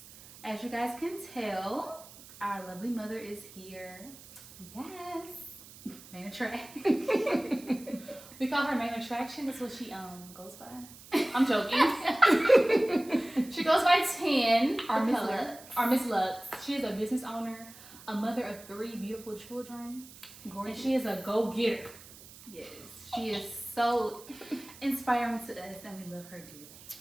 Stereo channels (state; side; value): noise; right; hiss, 19 dB below the sound